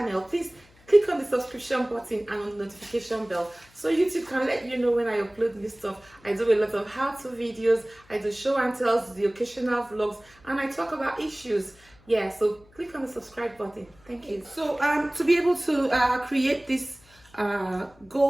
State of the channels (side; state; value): left; noise; hum, 28 dB below the sound